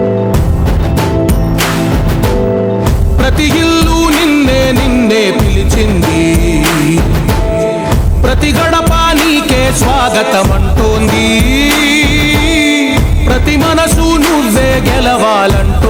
ప్రతి ఇల్లు నిన్నే నిన్నే పిలిచింది, ప్రతి గడప నీకే స్వాగతమంటోంది, ప్రతి మనసు నువ్వే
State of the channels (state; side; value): identical; both; correlation 1.00